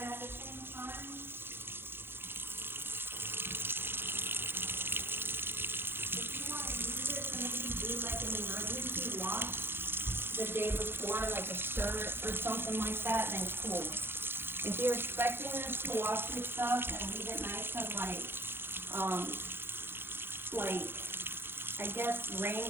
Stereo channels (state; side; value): late; left; 0.10 ms